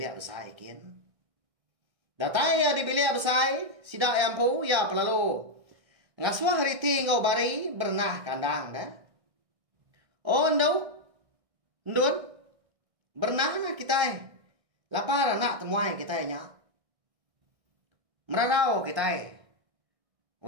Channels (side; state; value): left; late; 1.6 ms